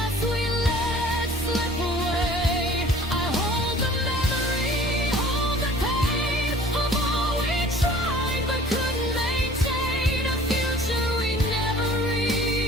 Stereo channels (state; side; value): normal; both; correlation 0.50